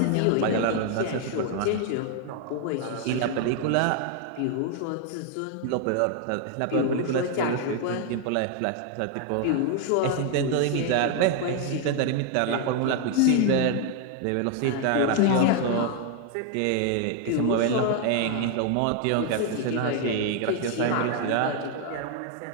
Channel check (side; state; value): both; different; correlation 0.00